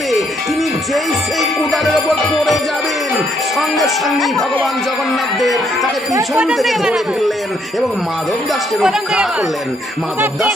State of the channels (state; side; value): normal; both; correlation 0.72